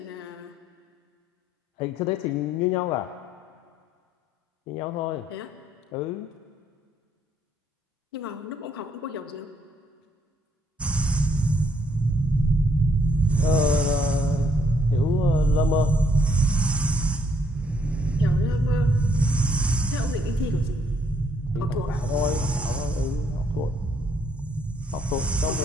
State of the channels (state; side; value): normal; both; correlation 0.70